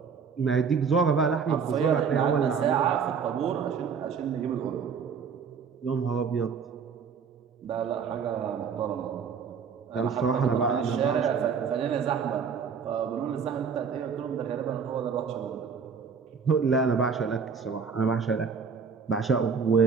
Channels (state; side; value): quieter; left; 6.1 dB